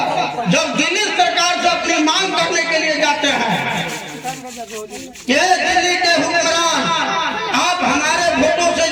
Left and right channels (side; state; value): both; identical; correlation 1.00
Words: जब दिल्ली सरकार से अपनी मांग करने के लिए जाते हैं कि दिल्ली के हुक्मरान आप हमारे वोटों से